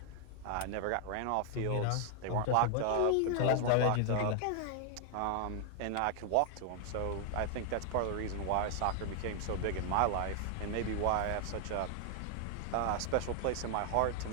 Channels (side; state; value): both; different; correlation 0.00